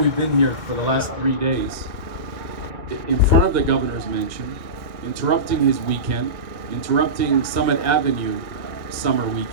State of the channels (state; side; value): late; left; 1.7 ms